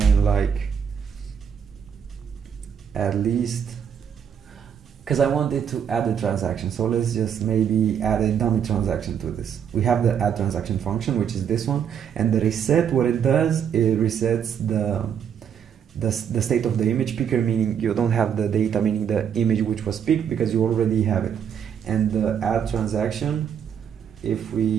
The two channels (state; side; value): quieter; left; 8.1 dB